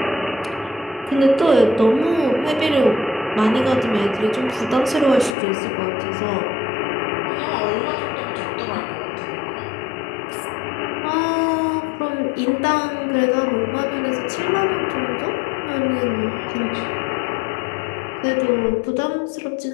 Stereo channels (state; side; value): drops out; right; at 5.4 s